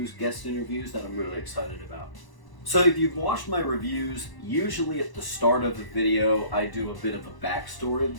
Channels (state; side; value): late; right; 1.0 ms